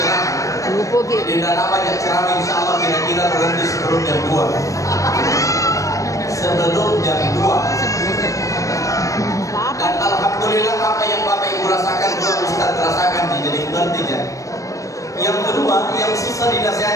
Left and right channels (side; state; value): right; late; 0.16 ms